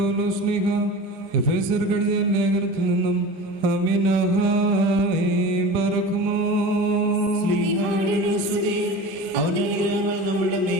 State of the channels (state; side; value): normal; both; correlation 0.34